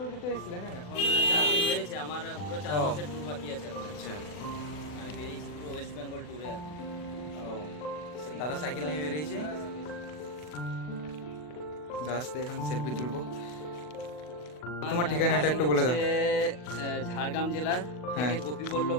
তো এসেছিলেন না? এখন 4 দিন হয়েছে, আমার পুরো 4 মাসের ট্যুর বাকি আছে এখন। আচ্ছা, আমি বেরিয়েছি পুরো ওয়েস্ট বেঙ্গল ট্যুরে এখন। ও দাদা সাইকেল নিয়ে বেরিয়েছে। দাদার সাথে এখন সেলফি তুলবো। তোমার ঠিকানাটা একটু বলে দাও। ঝাড়গ্রাম জেলার হ্যাঁ। থেকে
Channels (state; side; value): late; right; 40 ms